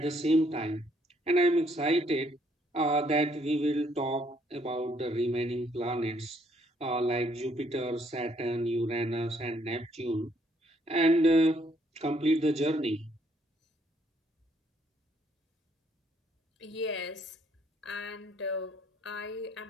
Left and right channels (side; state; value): both; normal; correlation 0.68